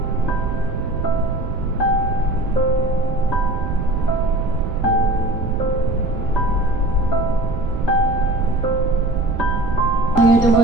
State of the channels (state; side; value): noise; right; rumble, 5 dB below the sound